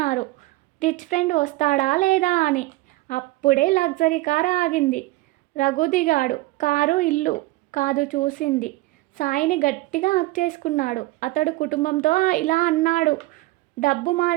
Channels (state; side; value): quieter; left; 19.4 dB